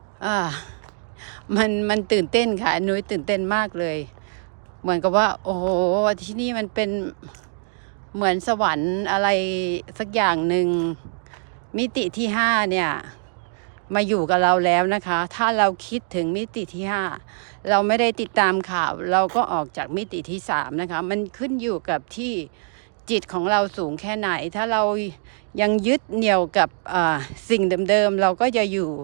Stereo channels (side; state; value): left; silent; 60 dB below the other